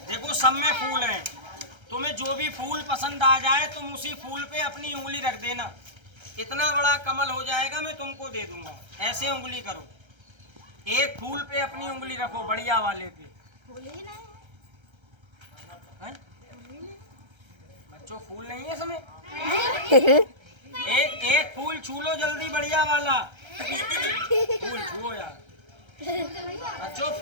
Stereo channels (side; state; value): left; late; 1.3 ms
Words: देखो सब में फूल हैं, तुम्हें जो भी फूल पसंद आ जाए तुम उसी फूल पे अपनी उंगली रख देना। इतना बड़ा कमल हो जाएगा मैं तुमको दे दूंगा। ऐसे उंगली करो, एक फूल पे अपनी उंगली रखो, बढ़िया वाले पे। बच्चों फूल नहीं है इसमें। एक फूल छू लो जल्दी, बढ़िया वाला फूल छुओ यार। बच्चों